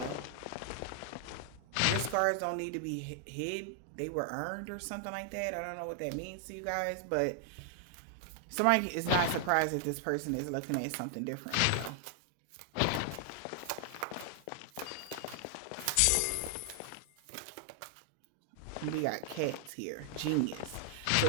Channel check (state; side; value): different; both; correlation 0.00